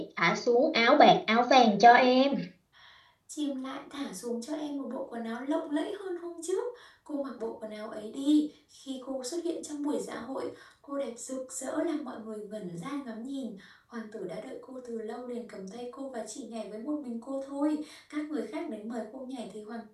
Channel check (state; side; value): identical; both; correlation 1.00